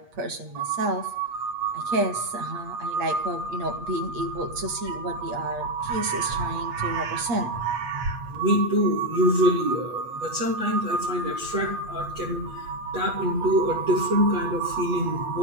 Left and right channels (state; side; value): late; left; 8.4 ms